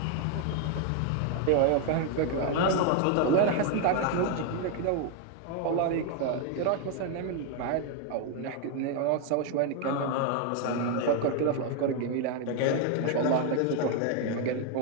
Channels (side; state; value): both; different; correlation 0.00